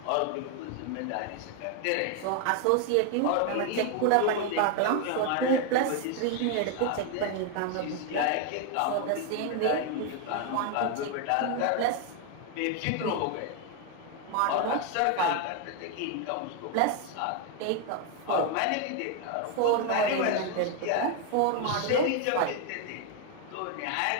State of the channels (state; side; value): different; both; correlation 0.01